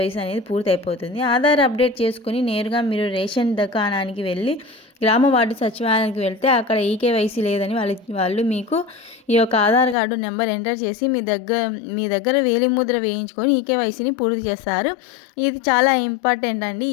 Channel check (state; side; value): drops out; right; at 10.0 s